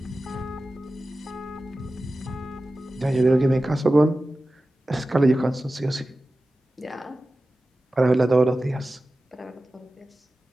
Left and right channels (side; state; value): both; normal; correlation 0.95